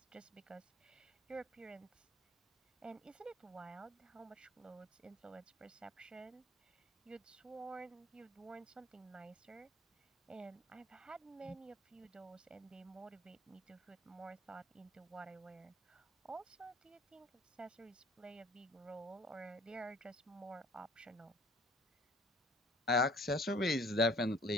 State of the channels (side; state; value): both; normal; correlation 0.53